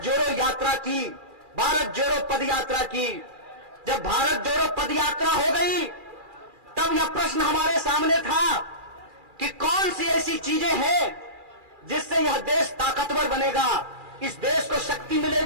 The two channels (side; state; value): left; late; 2.4 ms